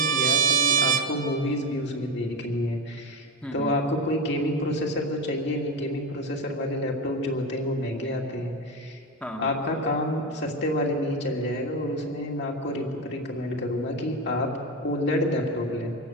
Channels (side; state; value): both; normal; correlation 0.16